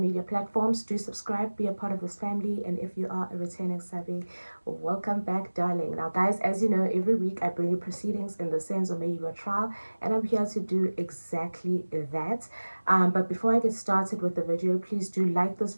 platforms. Do subscribe, be a part of this family, and if you are a returning savvy, welcome back, darling. Now guys, as you know, every week I bring you proceedings in the Senzo Meyiwa trial, and I'm here to do exactly that. But before I get started with the video, please do like this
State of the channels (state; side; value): inverted; both; correlation -1.00